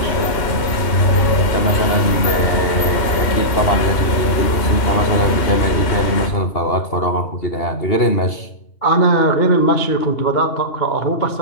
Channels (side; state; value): right; late; 2.8 ms